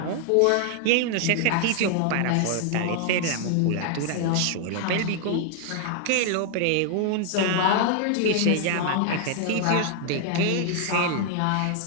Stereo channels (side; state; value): both; different; correlation 0.00